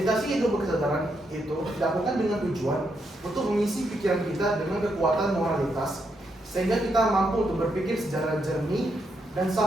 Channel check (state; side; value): normal; both; correlation 0.80